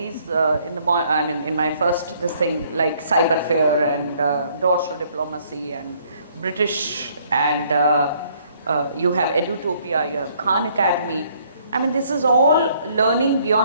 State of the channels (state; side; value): inverted; both; correlation -0.64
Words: in my first like Cyberfair and Doors to Diplomacy and British and you have Edutopia, you have Khan Academy. I mean, this is all learning